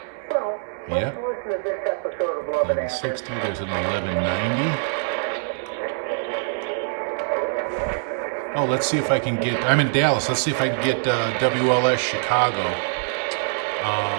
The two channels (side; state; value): left; silent; 63 dB below the other